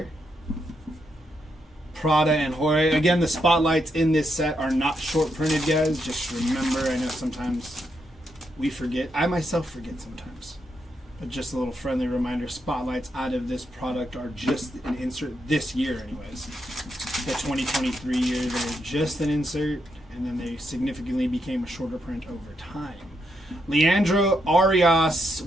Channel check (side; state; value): both; normal; correlation 0.81